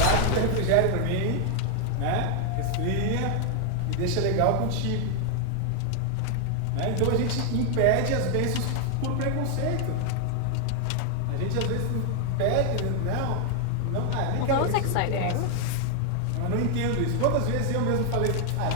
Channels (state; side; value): different; both; correlation 0.00